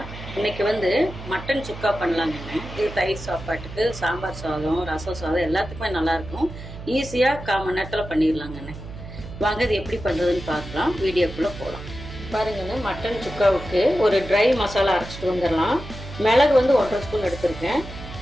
இன்னைக்கு மட்டன் சுக்கா பண்ணலாங்கண்ணே. இது தயிர் சாப்பாட்டுக்கு, சாம்பார் சாதம், ரசம் சாதம் எல்லாத்துக்குமே நல்லாயிருக்கும். ஈஸியாக 1/4 மணி நேரத்தில் பண்ணிடலாங்கண்ணே. வாங்க இது எப்படி பண்ணுறதுன்னு பார்க்கலாம். வீடியோக்குள்ளே போகலாம். பாருங்கண்ணே, மட்டன் சுக்காவுக்கு ஒரு ட்ரை மசாலா அரைச்சிட்டு வந்துடலாம். மிளகு 1.5 ஸ்பூன் எடுத்திருக்கேன்.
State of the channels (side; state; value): right; noise; hum, 12 dB below the sound